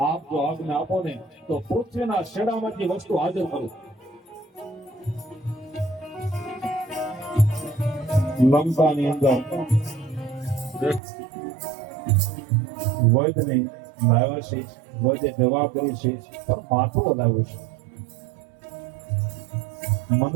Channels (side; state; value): left; drops out; at 11.0 s